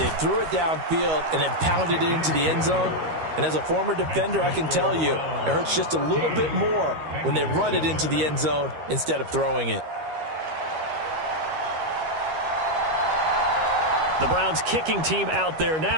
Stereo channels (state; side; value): late; left; 13 ms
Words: threw it downfield and then pounded it into the end zone. And as a former defender, I can tell you, it hurts just a little bit more when they run it into the end zone instead of throwing it. The Browns kicking team out there